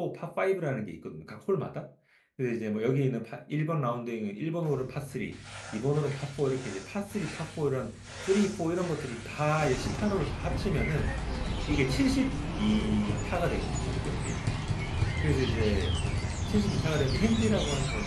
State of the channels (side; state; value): both; identical; correlation 1.00